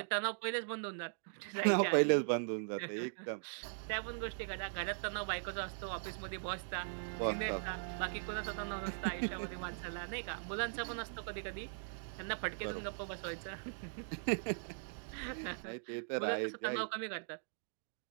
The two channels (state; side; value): silent; left; digital silence